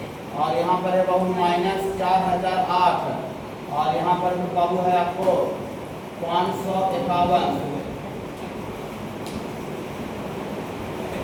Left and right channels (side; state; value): both; identical; correlation 1.00